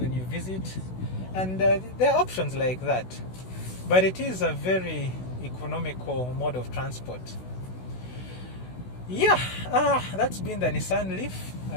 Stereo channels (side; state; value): right; late; 16 ms